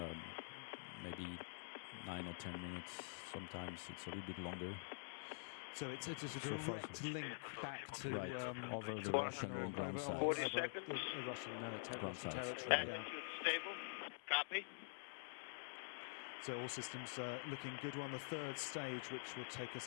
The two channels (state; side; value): silent; right; digital silence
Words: maybe 9 or 10 minutes. Sometimes it's a little bit longer. So it's a direct link back to over the Russian ground sites. Over the Russian territory. Right. Yeah. Stable. Copy. So all systems looking good. We're on the third stage, which will take us